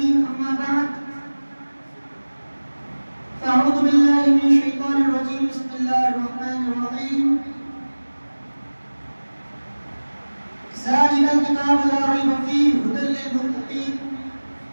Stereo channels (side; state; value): both; inverted; correlation -1.00